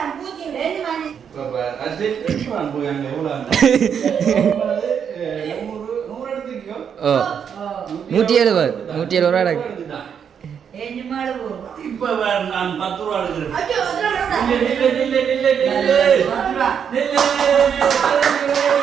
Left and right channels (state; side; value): quieter; left; 7.7 dB